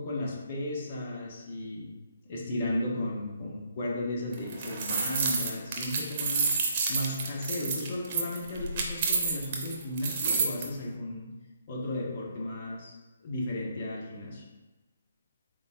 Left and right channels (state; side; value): inverted; both; correlation -0.68